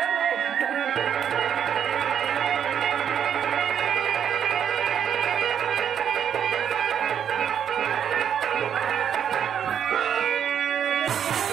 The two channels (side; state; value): left; quieter; 8.6 dB